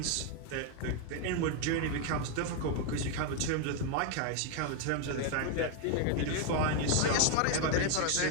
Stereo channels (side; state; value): both; different; correlation 0.01